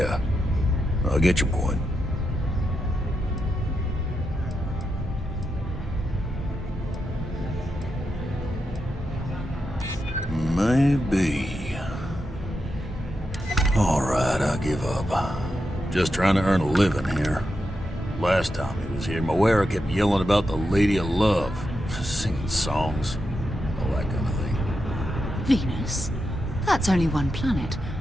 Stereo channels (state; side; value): normal; both; correlation 0.86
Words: I get your point. Maybe. All right, I give up. Just trying to earn a living here. Last time he was here, Moira kept yelling about the Lady of Love, singing songs, all that kind of thing. Venus? That's only one planet.